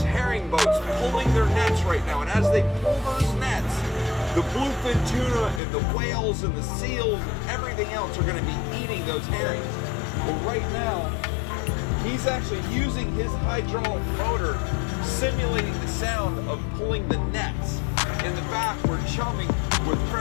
herring boats pulling their nets right now, and as they pull those nets, the bluefin tuna and the whales and the seals and everything else are going to be eating those herrings. But right now, he's actually using his hydraulic motor, simulating the sound of pulling the nets. In the back, we're chumming with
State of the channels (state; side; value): drops out; right; at 5.6 s